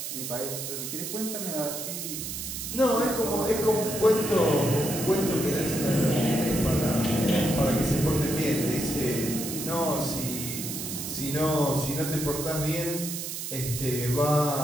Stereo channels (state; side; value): noise; right; hiss, 6 dB below the sound